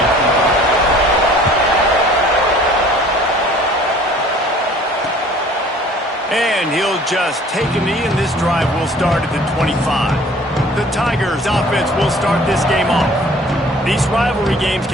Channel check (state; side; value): normal; both; correlation 0.51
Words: And he'll just take a knee, and this drive will start at the 25. The Tigers offense will start this game off. These rivalry games